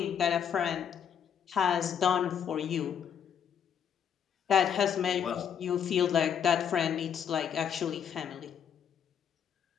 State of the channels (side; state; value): right; quieter; 8.2 dB